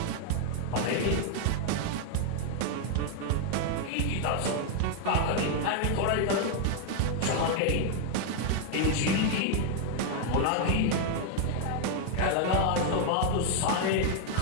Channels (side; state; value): both; different; correlation 0.00